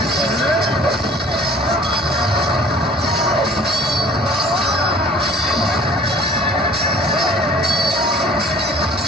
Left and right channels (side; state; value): both; normal; correlation 0.49